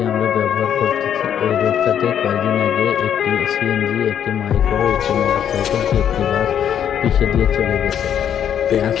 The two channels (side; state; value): right; quieter; 9.2 dB